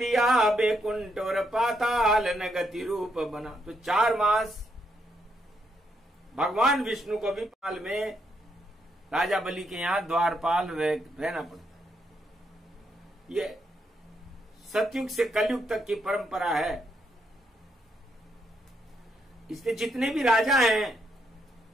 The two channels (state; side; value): normal; both; correlation 0.78